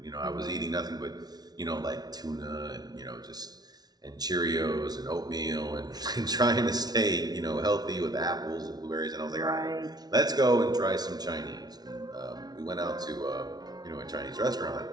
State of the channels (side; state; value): left; late; 0.19 ms